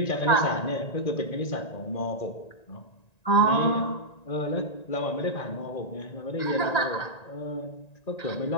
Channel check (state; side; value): late; right; 1.9 ms